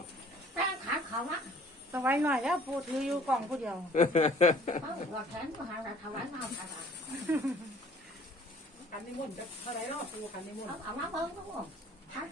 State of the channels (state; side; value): normal; both; correlation 0.53